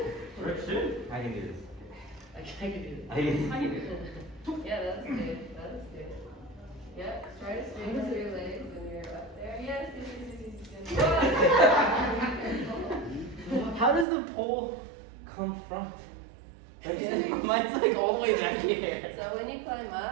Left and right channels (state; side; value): drops out; left; at 14.1 s